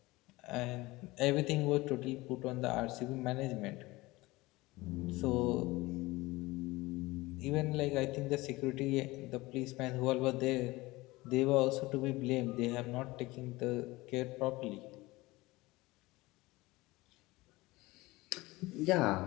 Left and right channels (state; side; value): quieter; right; 20.8 dB